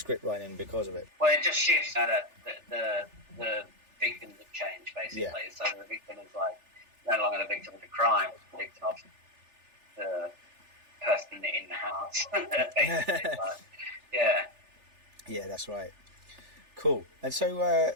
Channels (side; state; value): left; late; 3.4 ms